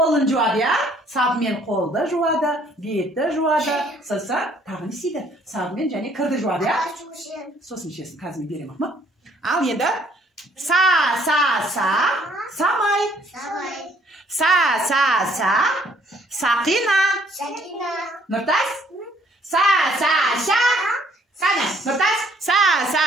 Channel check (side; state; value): both; normal; correlation 0.62